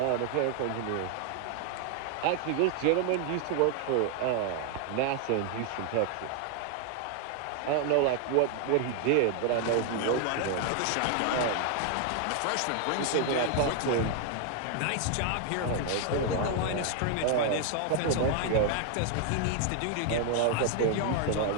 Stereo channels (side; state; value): both; different; correlation 0.00